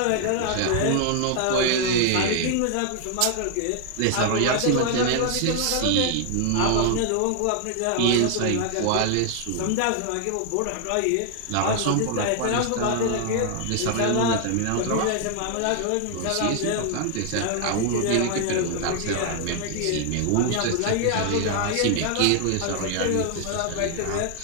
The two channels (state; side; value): different; both; correlation 0.00